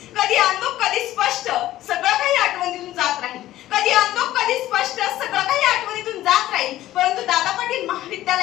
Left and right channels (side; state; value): right; quieter; 14.5 dB